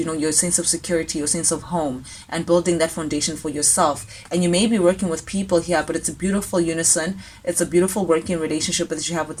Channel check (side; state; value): both; identical; correlation 1.00